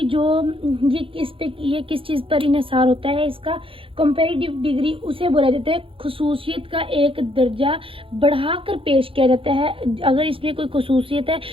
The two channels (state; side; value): late; left; 0.26 ms